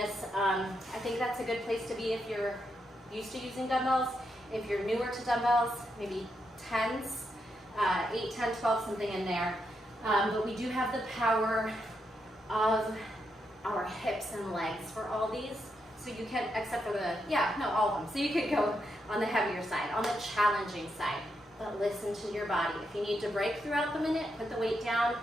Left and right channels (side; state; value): both; normal; correlation 0.82